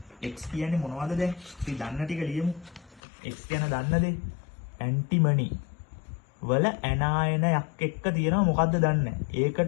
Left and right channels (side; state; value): right; drops out; at 3.0 s